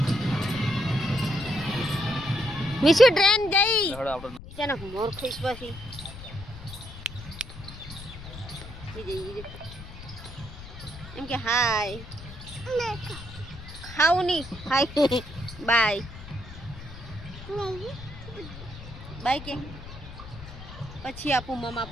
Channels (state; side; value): noise; left; rumble, 13 dB below the sound